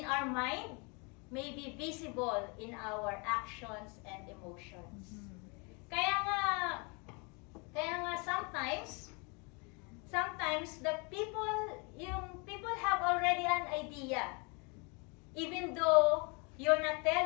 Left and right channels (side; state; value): right; quieter; 31.8 dB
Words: our mind may be visible in our actions and emotions. Kaya nga sometimes the people have already an idea. Even though you're not